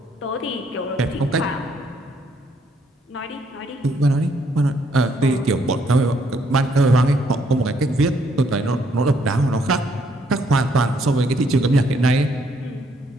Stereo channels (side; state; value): both; normal; correlation 0.69